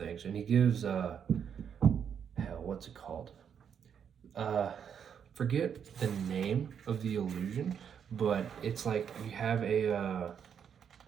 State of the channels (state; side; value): quieter; left; 7.8 dB